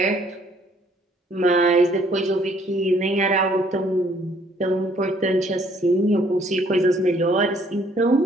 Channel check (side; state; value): both; normal; correlation 0.63